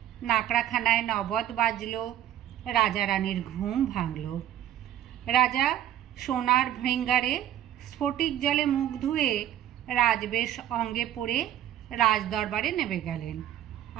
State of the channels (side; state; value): left; quieter; 11.7 dB